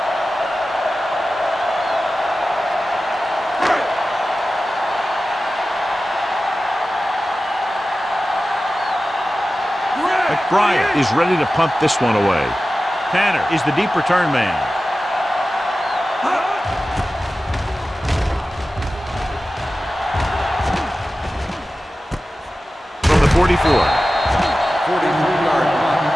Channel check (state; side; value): normal; both; correlation 0.95